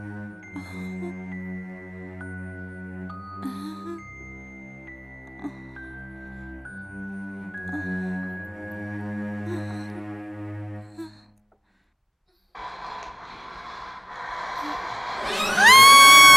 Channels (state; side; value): identical; both; correlation 1.00